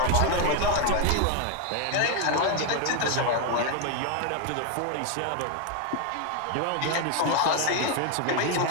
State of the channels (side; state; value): both; different; correlation 0.01